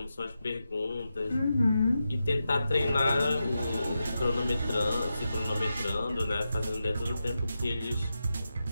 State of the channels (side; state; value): both; inverted; correlation -0.89